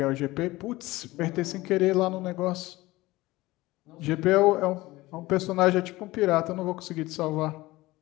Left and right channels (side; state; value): right; quieter; 19.2 dB